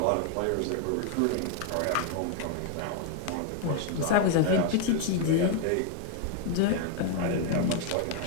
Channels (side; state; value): both; different; correlation 0.00